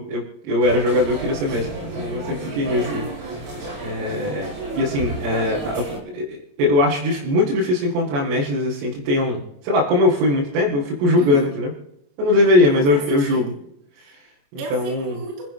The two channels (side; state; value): left; late; 28 ms